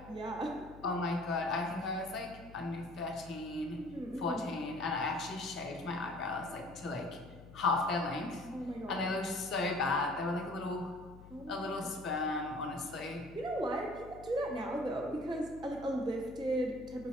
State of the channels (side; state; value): left; noise; hum, 17 dB below the sound